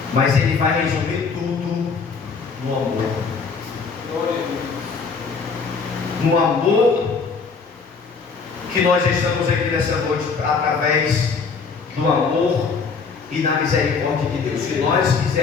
mas ele vai resumir tudo no amor. No amor que nós estamos aqui nessa noite, através do amor e na misericórdia de Deus. Se nós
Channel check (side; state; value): right; quieter; 5.1 dB